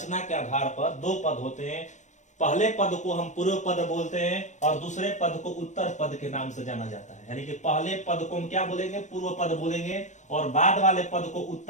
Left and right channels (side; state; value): right; late; 0.35 ms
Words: के आधार पर दो पद होते हैं। पहले पद को हम पूर्व पद बोलते हैं और दूसरे पद को उत्तर पद के नाम से जाना जाता है। यानी कि पहले पद को हम क्या बोलेंगे, पूर्व पद बोलेंगे, और बाद वाले पद को